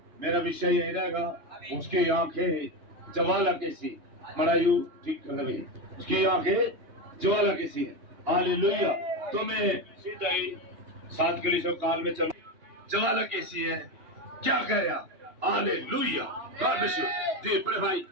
मेरा विषय यही रहेगा। उसकी आंखें ज्वाला की सी। मरायू ठीक कर दे भाई। उसकी आंखें ज्वाला की सी है। हालेलुया। तो मैं सीधा ही 7 कलीसिया काल में चल। ज्वाला कैसी है, क्या कह रहा? हालेलुया। God bless you. जी पढ़े भाई।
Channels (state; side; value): late; left; 3.0 ms